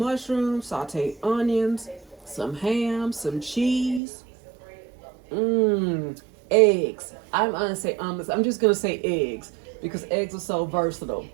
sauteed onions, some ham, some cheese. Eggs. I'm gonna say omelets. I'm just gonna say eggs because eggs are so versatile.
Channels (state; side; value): drops out; left; at 4.0 s